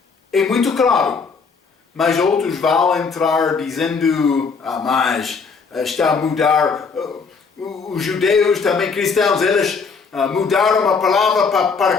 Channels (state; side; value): quieter; right; 5.1 dB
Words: É muito claro, mas outros vão entrar dizendo, mas está a mudar, os judeus, também cristãos, eles mudaram a palavra para